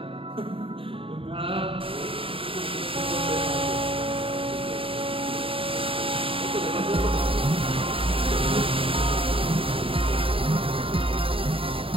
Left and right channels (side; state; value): left; late; 0.26 ms